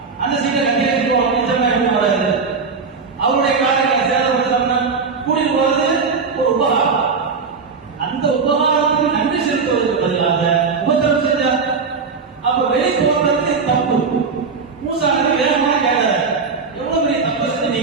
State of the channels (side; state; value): left; quieter; 4.9 dB